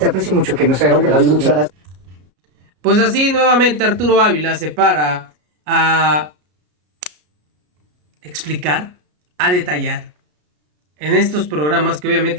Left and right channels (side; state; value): left; late; 33 ms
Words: aprecio mucho que nos hayas Hombre, David, muchas gracias. Pues así nuevamente Arturo Ávila se para a explicar, a detallar en estos programas que